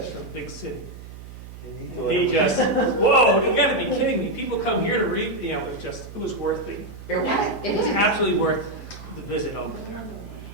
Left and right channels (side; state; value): right; noise; hum, 14 dB below the sound